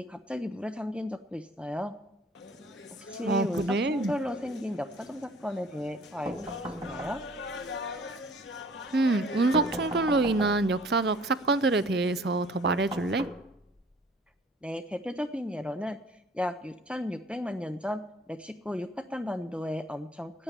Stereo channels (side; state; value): both; normal; correlation 0.53